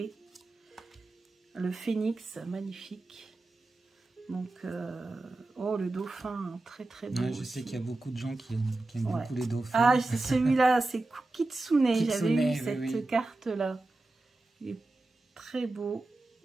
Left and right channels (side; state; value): left; quieter; 3.0 dB